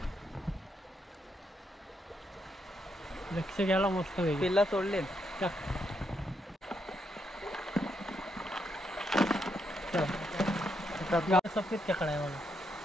लक्ष घ्यायला मस्त पिल्ला सोडले सफेद खेकडा आहे बघा।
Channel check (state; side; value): normal; both; correlation 0.79